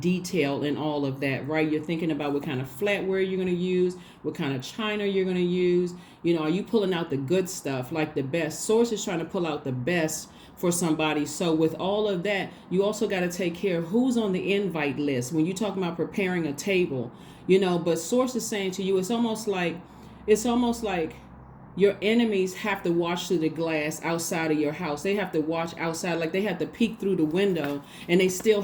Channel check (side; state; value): both; identical; correlation 1.00